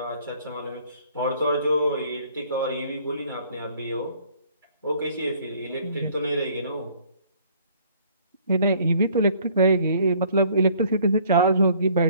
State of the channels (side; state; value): both; inverted; correlation -0.58